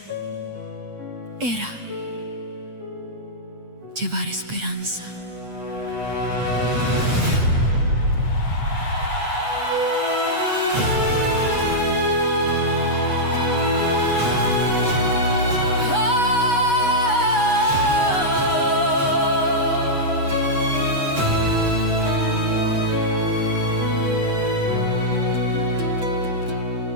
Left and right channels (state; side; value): late; left; 8.3 ms